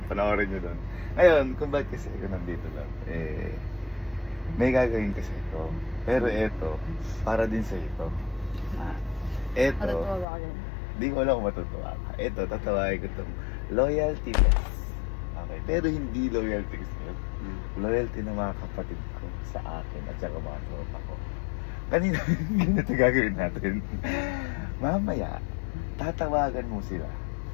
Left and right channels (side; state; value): right; drops out; at 10.2 s